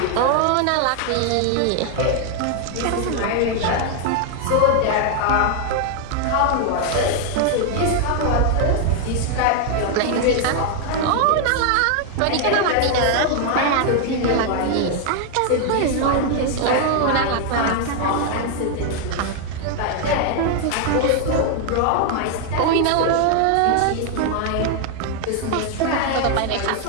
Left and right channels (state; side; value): different; both; correlation 0.00